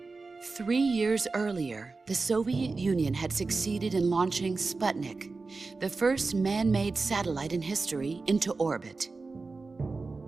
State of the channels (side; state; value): left; quieter; 3.9 dB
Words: 3 years earlier, the Soviet Union had succeeded in launching Sputnik, the first man-made satellite in history, into orbit.